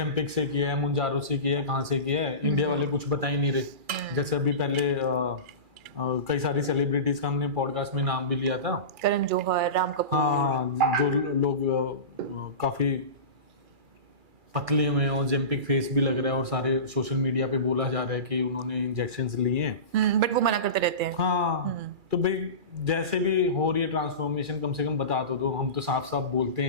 से किया है, मुंजारो से किया है, कहाँ से किया है। इंडिया वाले कुछ बता ही नहीं रहे। जैसे अभी पहले कई सारी सेलिब्रिटीज का हमने पॉडकास्ट में नाम भी लिया था, करण जौहर, राम कपूर। हाँ, जो लोग काफी पतले हुए हैं, ओजेम्पिक फेस भी लग रहा है, और सारे सोशल मीडिया पे बोला जा रहा है कि उन्होंने इंजेक्शंस लिए हैं, बट वो मना करते रहते हैं। हाँ, तो भाई जैसे भी हो रही है ट्रांसफॉर्मेशन, कम से कम बता दो। हम तो साफ साफ बोलते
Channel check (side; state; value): left; late; 2.4 ms